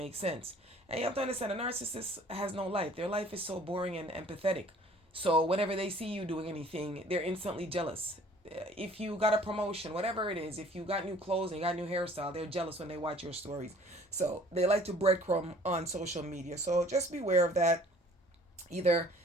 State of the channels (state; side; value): normal; both; correlation 0.53